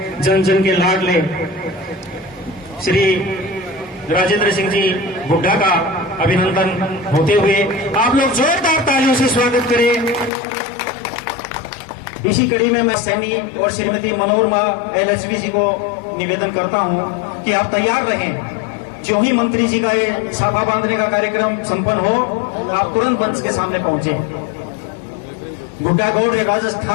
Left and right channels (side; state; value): right; drops out; at 10.3 s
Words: जन जन के लाडले श्री राजेंद्र सिंह जी हुड्डा का अभिनंदन होते हुए आप लोग जोरदार तालियों से स्वागत करें। इसी कड़ी में मैं सैनी और श्रीमती मनोरमा LHV जी को निवेदन करता हूं कि आप तैयार रहें। जो ही मंत्री जी का ये साफा बांधने का कार्यक्रम संपन्न हो, आप तुरंत मंच के सामने पहुंचे। गुड्डागौड़